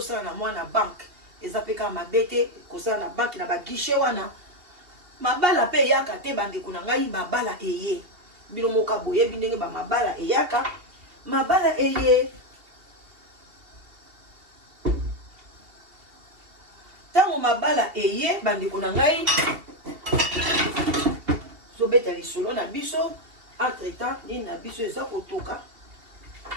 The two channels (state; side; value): late; left; 2.8 ms